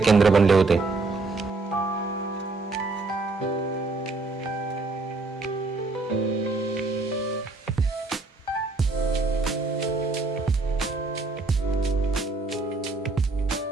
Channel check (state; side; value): quieter; left; 3.5 dB